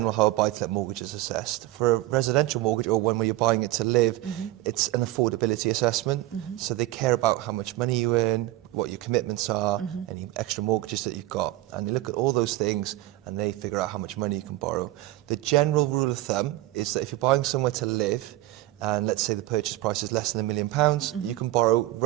how a buy-to-let mortgage is assessed. For a residential mortgage or one where you're buying it to live, it's an affordability assessment. So they care about how much money you earn, what your commitments are, any extra mortgages that you've got. And they look at all those things and they figure out how much money you can borrow. The general rule of thumb is that if you're buying somewhere to live, and let's say the purchase price is less than £1 million, you can borrow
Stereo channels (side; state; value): left; quieter; 16.4 dB